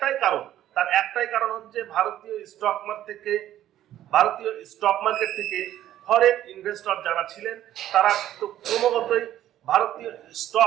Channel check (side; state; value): left; quieter; 12.5 dB